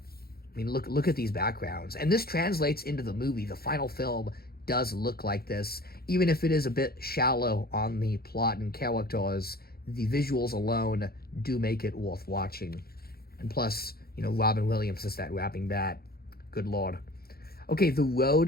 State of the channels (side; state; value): right; late; 0.44 ms